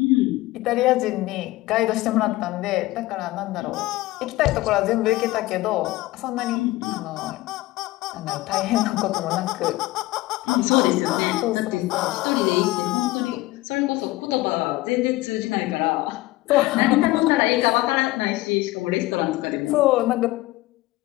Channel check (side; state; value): right; quieter; 18.7 dB